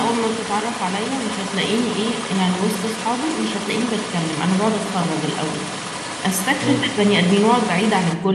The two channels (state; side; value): identical; both; correlation 1.00